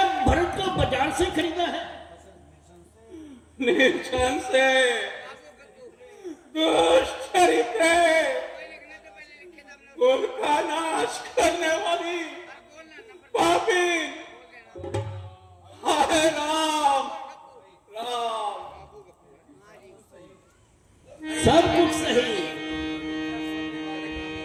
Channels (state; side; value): identical; both; correlation 1.00